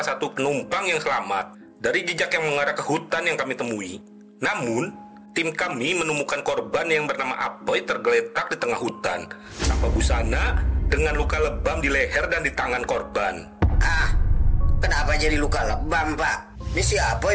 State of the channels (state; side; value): identical; both; correlation 1.00